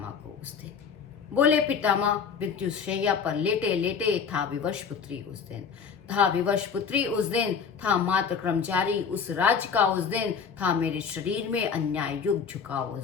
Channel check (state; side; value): quieter; right; 6.3 dB